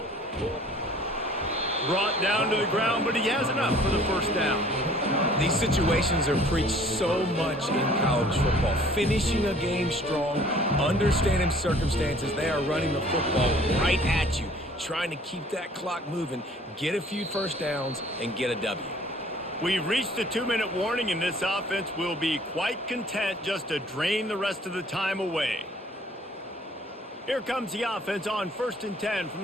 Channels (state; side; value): normal; both; correlation 0.54